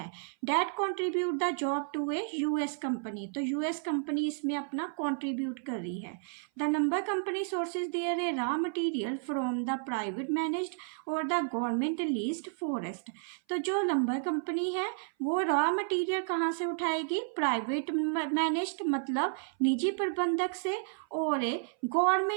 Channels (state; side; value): silent; left; 57 dB below the other